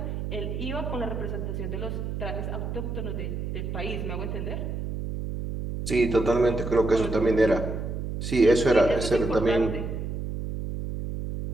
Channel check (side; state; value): right; noise; hum, 4 dB below the sound